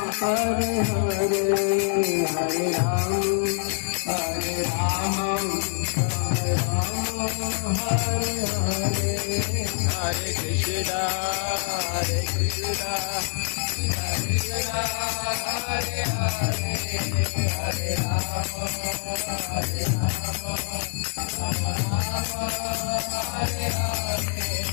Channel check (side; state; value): right; silent; digital silence